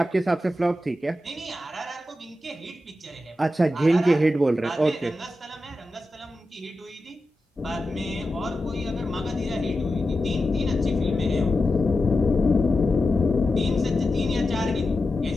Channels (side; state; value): both; normal; correlation 0.91